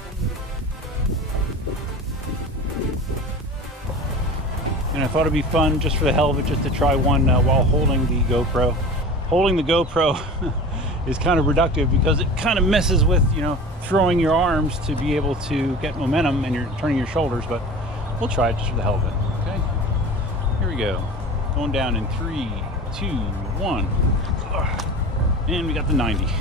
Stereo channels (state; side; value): normal; both; correlation 0.36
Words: And I thought it'd be fun just for the hell of it, just to try one while holding the GoPro. Holding the GoPro is kind of reductive because it kind of messes with, you know, throwing your arms to be able to get momentum and you're turning your shoulders, but we'll try it just for the hell of it. Okay, here we go. Going down in 3, 2, 1. And we got the 90.